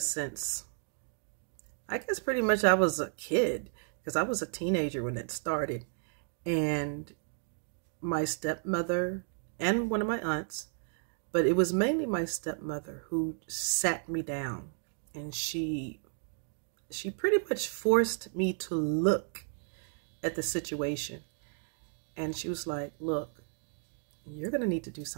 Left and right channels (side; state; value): left; silent; 56 dB below the other